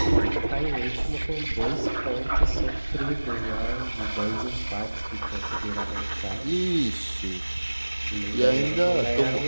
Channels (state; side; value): inverted; both; correlation -1.00